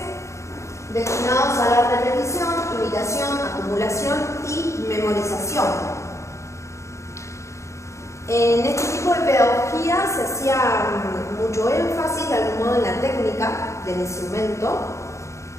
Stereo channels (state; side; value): late; right; 0.14 ms